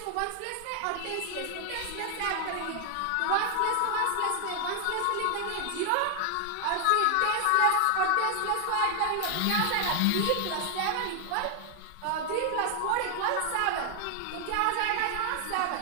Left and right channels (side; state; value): both; different; correlation 0.00